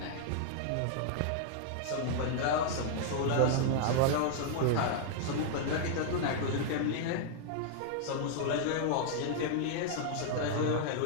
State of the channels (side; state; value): both; different; correlation -0.01